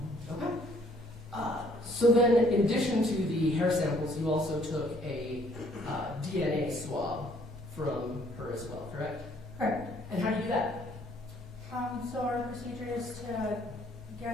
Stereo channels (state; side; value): normal; both; correlation 0.62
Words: Okay. So then, in addition to the hair samples, you also took a DNA swab from her as well, correct? Correct. And how do you do that? So our procedure is to